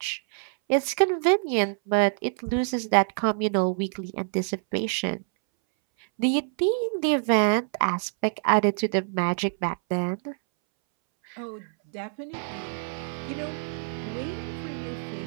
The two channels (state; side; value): silent; left; 61 dB below the other